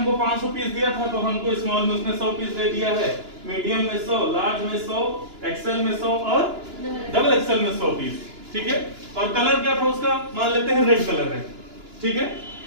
500 पीस दिया था तो हमको स्मॉल में उसने 100 पीस दे दिया है, मीडियम में 100, लार्ज में 100, एक्सेल में 100 और डबल एक्सेल में 100 पीस। ठीक है, और कलर क्या था उसका? मान लेते हैं रेड कलर है। ठीक है,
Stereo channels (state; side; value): late; left; 2.9 ms